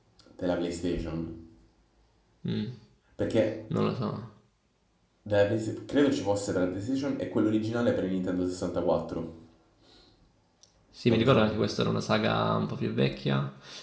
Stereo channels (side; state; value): both; identical; correlation 1.00